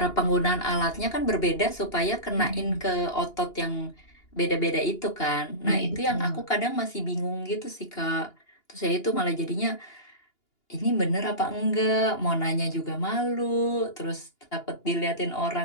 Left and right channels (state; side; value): late; right; 2.8 ms